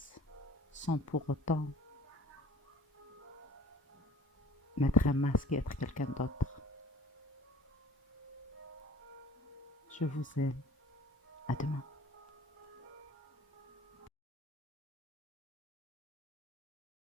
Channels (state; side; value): normal; both; correlation 0.48